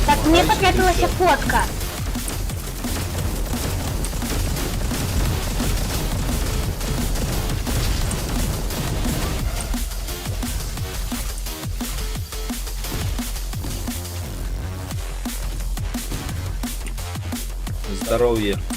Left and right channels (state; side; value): identical; both; correlation 1.00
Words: Так, мне потребовалась фотка. Здоровье.